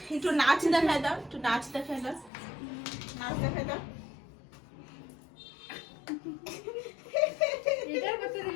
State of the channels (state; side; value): drops out; right; at 2.3 s